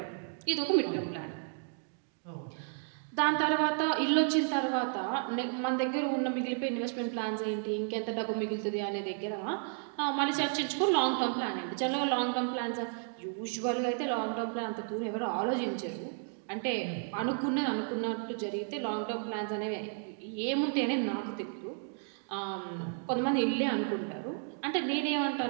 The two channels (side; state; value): left; silent; 56 dB below the other